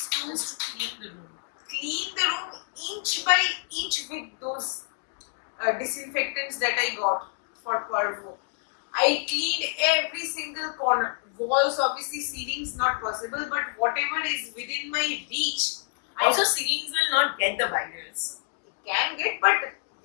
to Just to clean the room. clean the room inch by inch with those disinfectants that I got for parvo. I cleaned every single corner. Walls, obviously, ceilings not possible, but whatever is within my reach, Also, ceilings will not get the virus. can get, but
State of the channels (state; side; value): silent; right; 60 dB below the other